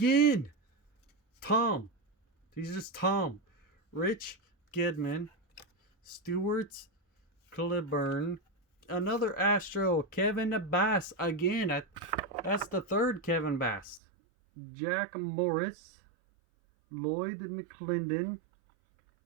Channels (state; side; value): drops out; left; at 14.0 s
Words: Tom. He's just Tom. Rich Gedman, Stuart Cliburn, another Astro, Kevin Bass, again. That's the third Kevin Bass. Jack Morris, Lloyd McClendon,